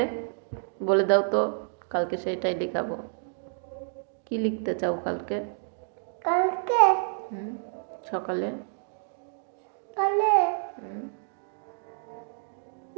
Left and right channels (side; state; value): left; silent; digital silence